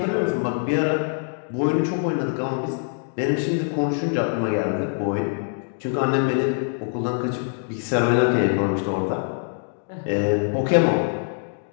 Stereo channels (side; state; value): right; silent; 63 dB below the other